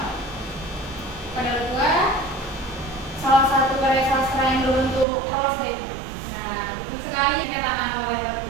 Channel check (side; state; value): left; drops out; at 5.1 s